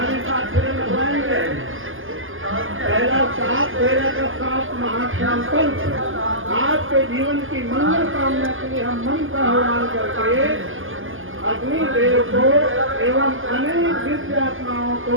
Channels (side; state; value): left; late; 0.59 ms